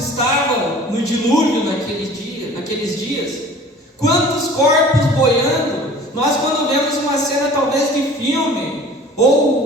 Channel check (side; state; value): both; normal; correlation 0.45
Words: no dilúvio naqueles dias? Quantos corpos boiando? Nós, quando vemos uma cena talvez de filme,